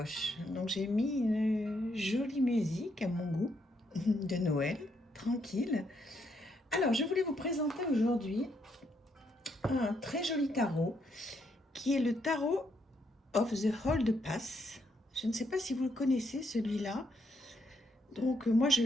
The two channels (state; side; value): normal; both; correlation 0.76